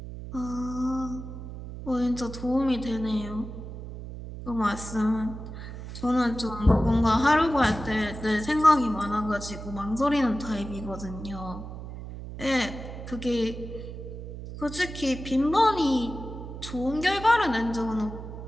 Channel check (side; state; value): right; noise; hum, 10 dB below the sound